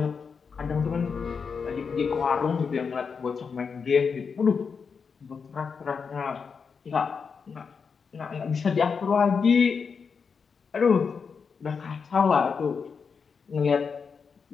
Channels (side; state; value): right; quieter; 5.7 dB